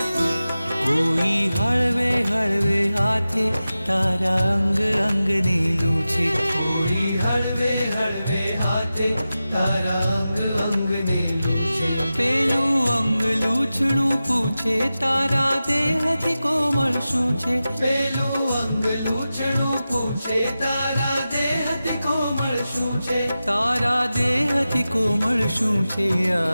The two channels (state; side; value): inverted; both; correlation -0.94